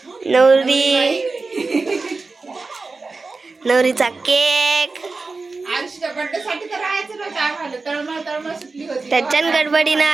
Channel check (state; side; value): quieter; left; 3.9 dB